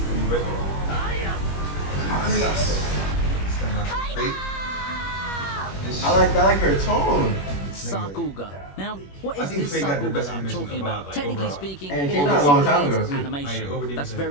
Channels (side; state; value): right; late; 21 ms